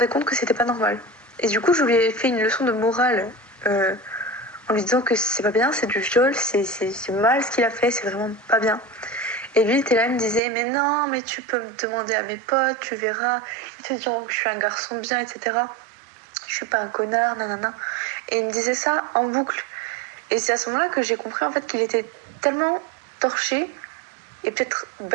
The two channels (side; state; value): left; drops out; at 10.4 s